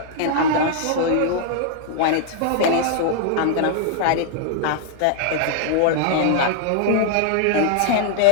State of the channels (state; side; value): different; both; correlation 0.00